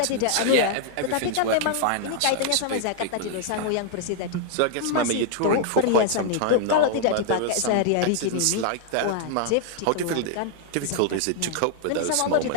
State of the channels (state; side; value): different; both; correlation 0.00